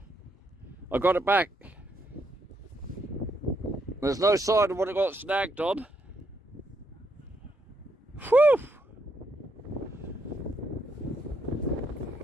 I got it back. There's no sign of what it got snagged on. Whew!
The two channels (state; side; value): normal; both; correlation 0.76